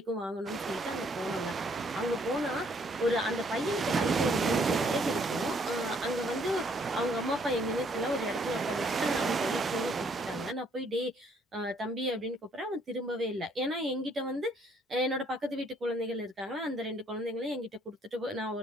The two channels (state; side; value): normal; both; correlation 0.66